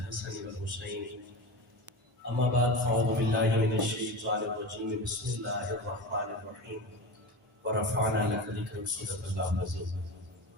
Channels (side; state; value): both; normal; correlation 0.27